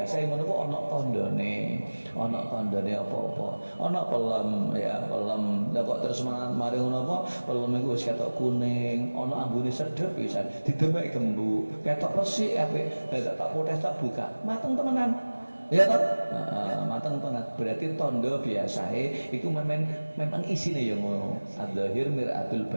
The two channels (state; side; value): inverted; both; correlation -1.00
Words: ngono ku ana tandane. Ana tandane apa-apa. Ana pelem ya, pelem. Lah kok terus mari ngono apa? Pelem iku wis ketok kuning, ana ambune sedhep pisan. Didemek gembuk, ketok resik apik. Lah tak potes tak buka. Mateng temenan. Ya tak? Mateng tenan. Berarti tanda biasae iku memang isine ya ngono. Adzahir miratul